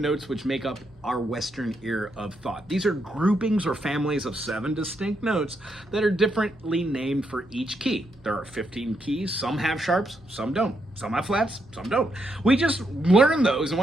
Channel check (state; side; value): normal; both; correlation 0.79